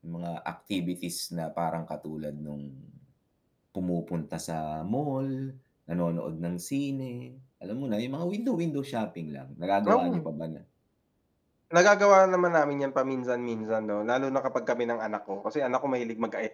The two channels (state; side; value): identical; both; correlation 1.00